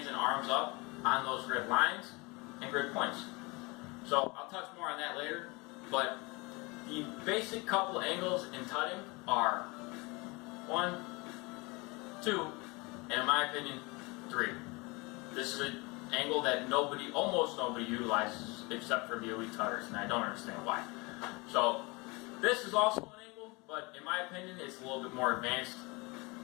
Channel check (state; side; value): quieter; right; 26.4 dB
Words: and arms up on those grid lines and grid points. So I'll touch more on that later, but the basic couple angles in tutting are 1, 2, and in my opinion, 3. This is an angle that almost nobody utilizes except for the elite tutters, and I don't understand why. So this is also an angle, but in my opinion, it's a little bit more advanced.